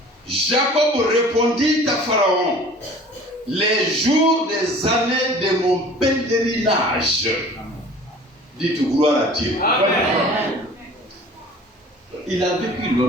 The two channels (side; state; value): both; normal; correlation 0.46